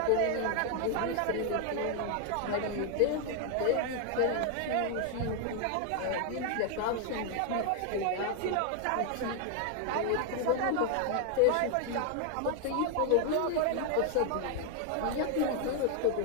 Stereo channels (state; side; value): different; both; correlation 0.00